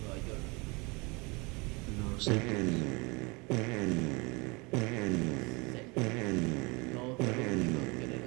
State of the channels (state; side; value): quieter; left; 27.5 dB